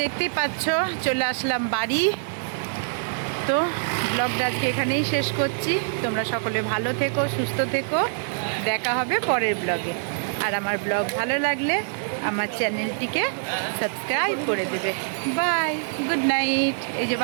দেখতেই পাচ্ছ চলে আসলাম বাড়ি। তো ব্লগটা আজকে এখানেই শেষ করছি। তোমরা সকলে ভালো থেকো, সুস্থ থেকো। দেখা হবে পরের ব্লগে। আর আমার ব্লগ ভালো লাগলে আমার চ্যানেলটিকে সাবস্ক্রাইব করে দেবে। Bye, good night. এই যে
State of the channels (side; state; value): left; silent; digital silence